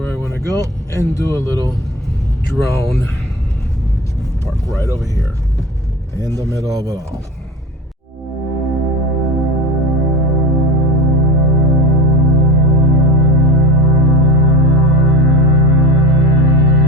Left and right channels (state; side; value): normal; both; correlation 0.32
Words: I want to go and do a little drone. Park right over here in the middle of it all.